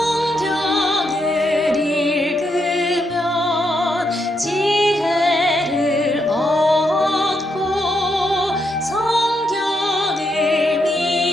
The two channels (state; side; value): normal; both; correlation 0.80